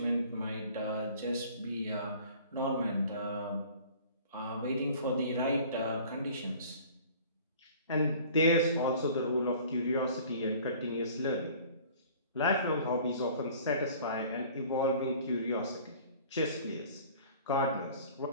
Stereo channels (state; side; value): inverted; both; correlation -0.48